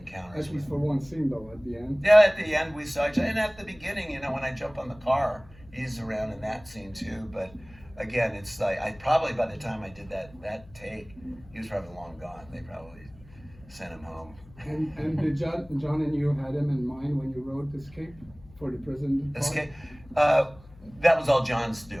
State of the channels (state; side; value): noise; left; hum, 23 dB below the sound